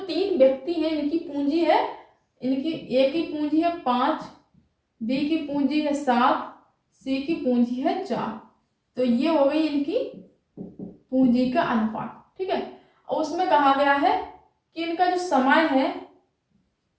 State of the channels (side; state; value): both; identical; correlation 1.00